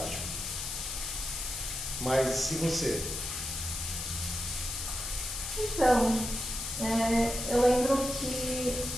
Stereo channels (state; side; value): noise; left; hiss, 5 dB below the sound